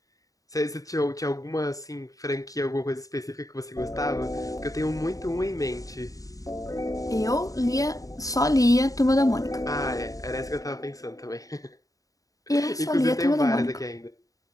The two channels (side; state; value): right; late; 0.17 ms